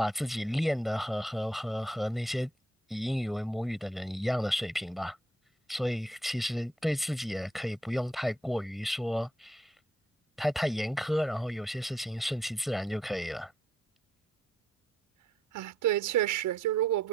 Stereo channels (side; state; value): both; normal; correlation 0.72